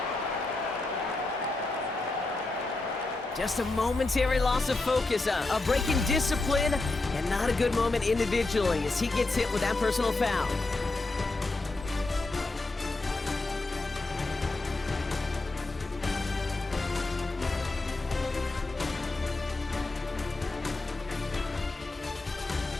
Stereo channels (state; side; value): quieter; right; 3.2 dB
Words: Just a momentary loss of focus, a break in discipline, and not a good moment individually as he gets hit with that personal foul.